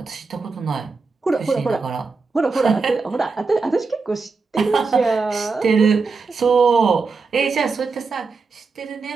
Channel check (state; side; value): quieter; left; 4.4 dB